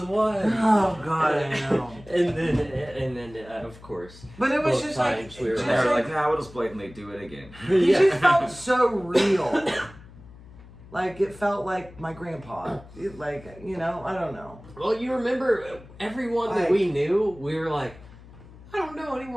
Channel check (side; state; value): left; noise; hum, 20 dB below the sound